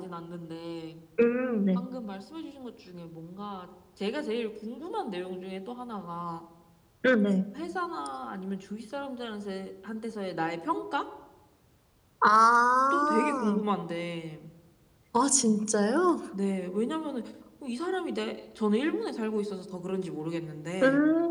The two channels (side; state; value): both; identical; correlation 1.00